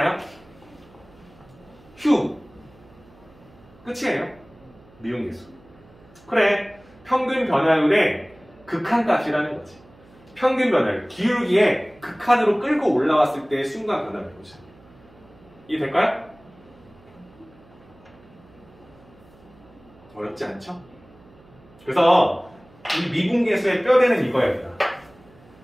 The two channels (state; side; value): noise; right; hum, 26 dB below the sound